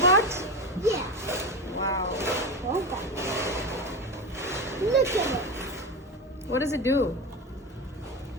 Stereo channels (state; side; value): normal; both; correlation 0.21